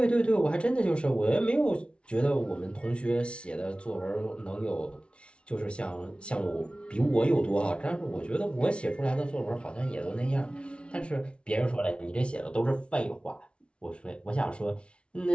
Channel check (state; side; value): late; right; 0.059 ms